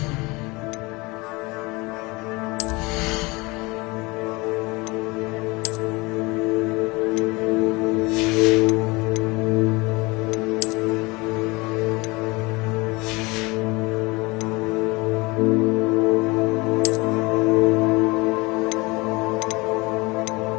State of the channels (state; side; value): quieter; right; 24.6 dB